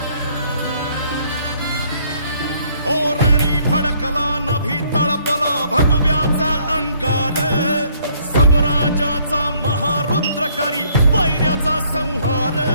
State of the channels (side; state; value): both; inverted; correlation -0.64